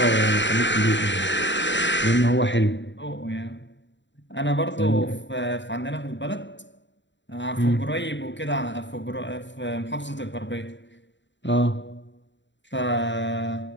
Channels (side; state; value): right; late; 0.53 ms